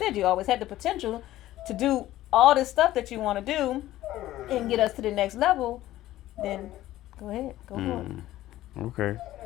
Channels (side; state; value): right; quieter; 14.8 dB